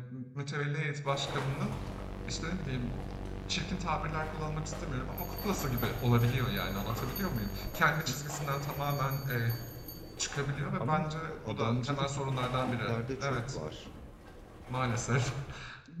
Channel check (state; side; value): identical; both; correlation 1.00